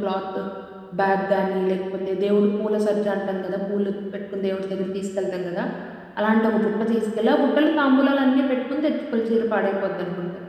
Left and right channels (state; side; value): identical; both; correlation 1.00